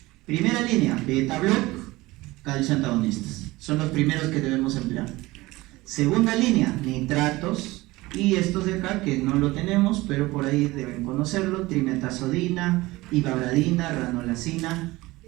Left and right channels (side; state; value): left; quieter; 20.0 dB